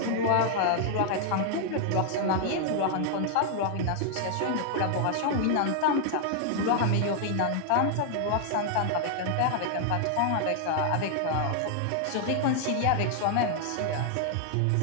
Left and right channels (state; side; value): different; both; correlation 0.00